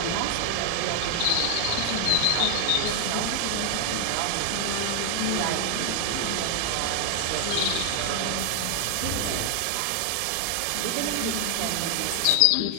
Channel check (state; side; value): different; both; correlation 0.00